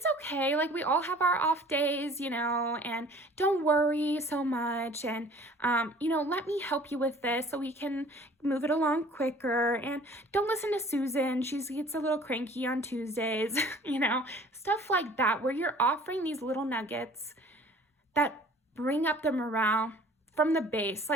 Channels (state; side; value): normal; both; correlation 0.50